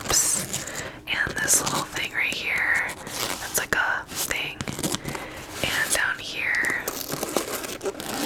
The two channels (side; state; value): both; identical; correlation 1.00